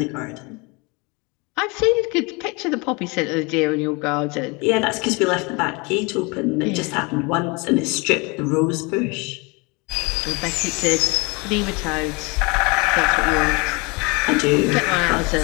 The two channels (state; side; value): quieter; right; 28.2 dB